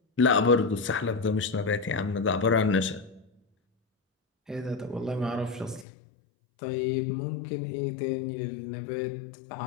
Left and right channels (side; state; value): right; drops out; at 5.9 s